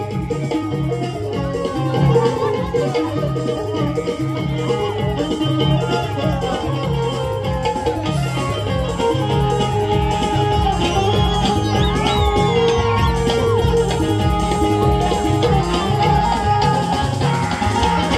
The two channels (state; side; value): identical; both; correlation 1.00